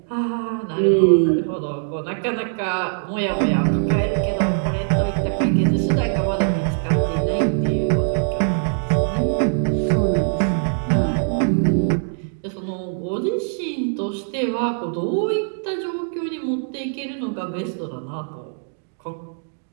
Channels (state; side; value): silent; left; 64 dB below the other